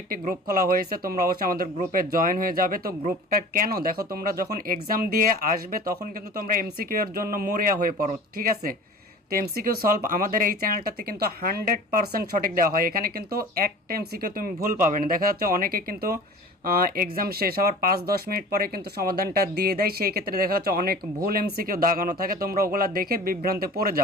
একটি গ্রুপ খোলা হয়েছে, তোমরা অবশ্যই আমাদের গ্রুপে জয়েন হয়ে যাবে। তো গ্রুপটা কেন, দেখো তোমরা যখন এক্সাম দিয়ে আসবে তখন কিন্তু তোমরা এমসিকিউ এর জন্য মরিয়া হয়ে পড়ো, ঠিক আছে। তো এমসিকিউ সলভ আমাদের এই চ্যানেলটাতে কিন্তু 100% সঠিক দেওয়া হয়, এখানে কিন্তু একটা এমসিকিউ তুমি ভুল পাবে না। দেখা যাচ্ছে অনেকে কিন্তু এক্সাম শেষ হওয়ার 5-10 মিনিট পরে কিন্তু সমাধানটা দিয়ে দেয়, সেই ক্ষেত্রে দেখা যাচ্ছে অনেক ভুল এমসিকিউ দাগানো থাকে, তোমরা ওগুলা দেখে বিভ্রান্তে পড়ে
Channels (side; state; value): both; normal; correlation 0.40